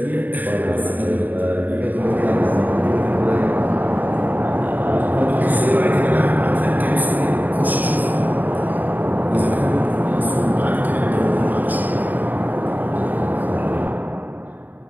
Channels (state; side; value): late; left; 0.085 ms